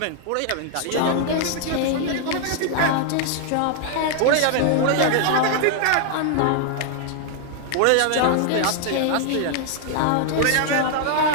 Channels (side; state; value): both; different; correlation 0.00